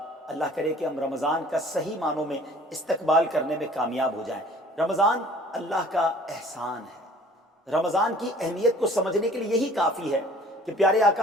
اللہ کرے کہ ہم رمضان کا صحیح معنوں میں استقبال کرنے میں کامیاب ہو جائیں۔ رمضان اللہ کا احسان ہے۔ رمضان کی اہمیت کو سمجھنے کے لیے یہی کافی ہے کہ پیارے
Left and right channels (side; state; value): both; normal; correlation 0.51